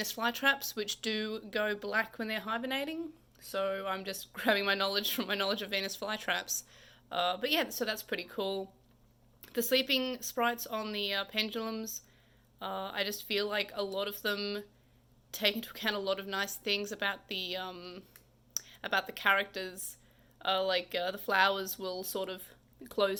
flytraps, which do go black when they're hibernating. So I'm just grabbing my knowledge from my knowledge of Venus flytraps. But yeah, so that's pretty cool. The sleeping sprites on the pendulums, I just feel like a lot of them take into account a lot of nice things about the characters. The flowers will sort of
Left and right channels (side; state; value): both; identical; correlation 1.00